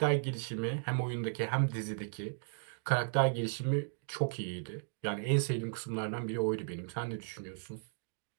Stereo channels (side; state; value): left; silent; digital silence